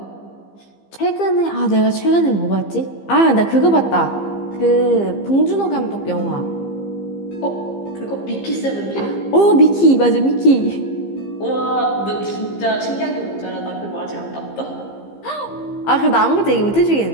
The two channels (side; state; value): right; late; 15 ms